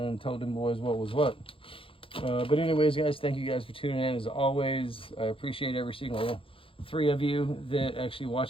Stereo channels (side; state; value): right; late; 0.26 ms